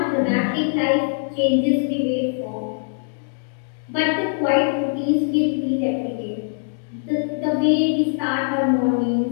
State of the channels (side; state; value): right; silent; digital silence